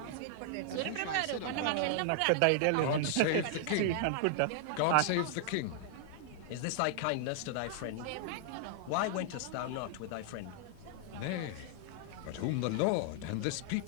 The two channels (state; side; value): different; both; correlation 0.00